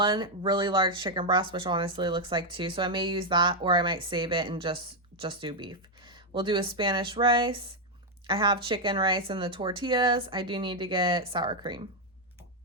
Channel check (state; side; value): normal; both; correlation 0.01